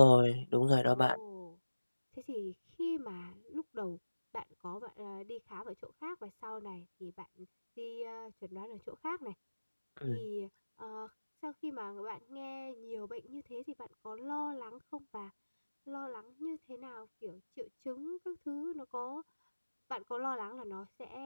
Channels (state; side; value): inverted; both; correlation -1.00